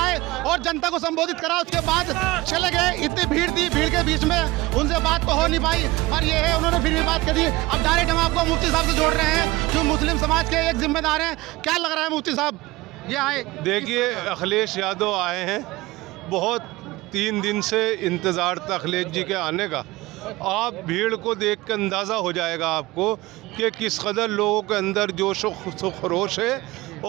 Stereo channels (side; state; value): left; quieter; 19.9 dB